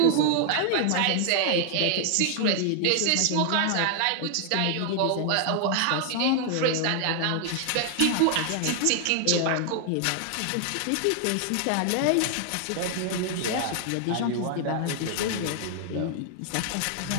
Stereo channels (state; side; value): different; both; correlation 0.00